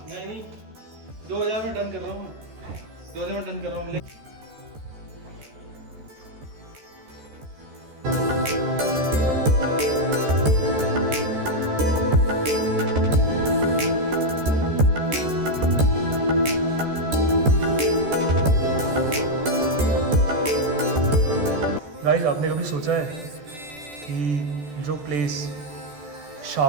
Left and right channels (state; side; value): late; left; 14 ms